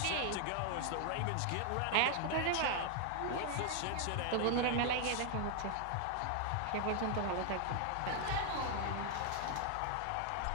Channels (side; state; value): both; different; correlation 0.00